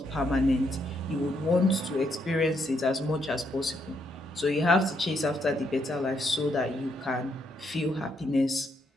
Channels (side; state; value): both; normal; correlation 0.76